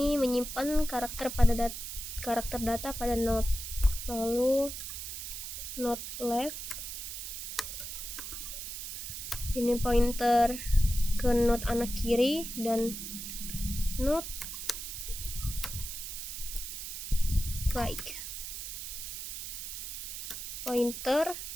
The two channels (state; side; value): noise; right; hiss, 7 dB below the sound